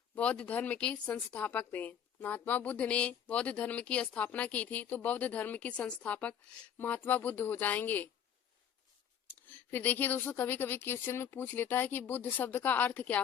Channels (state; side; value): quieter; right; 8.7 dB